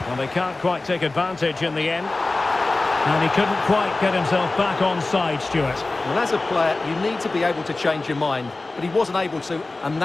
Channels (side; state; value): right; quieter; 3.2 dB